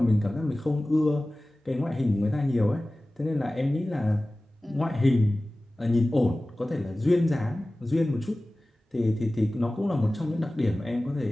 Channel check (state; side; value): normal; both; correlation 0.97